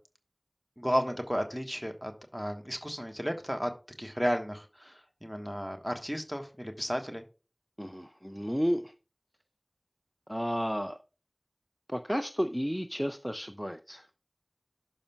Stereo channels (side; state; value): both; identical; correlation 1.00